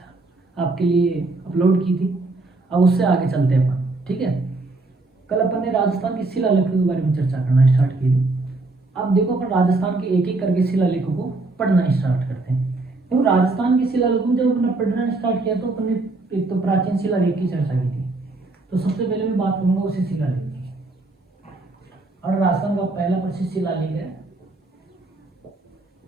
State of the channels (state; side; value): quieter; left; 3.2 dB